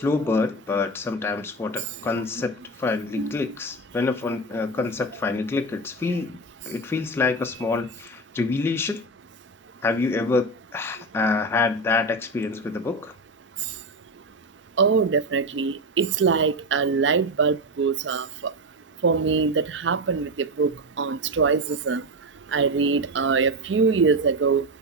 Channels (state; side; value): normal; both; correlation 0.18